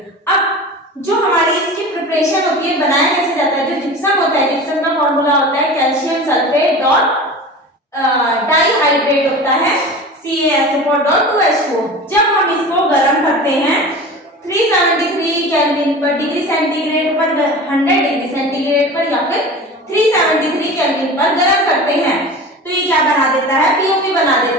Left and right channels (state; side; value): normal; both; correlation 0.34